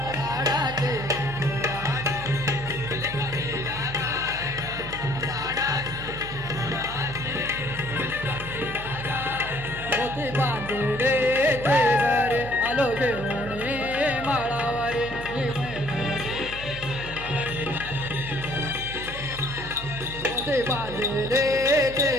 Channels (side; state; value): right; noise; hum, 12 dB below the sound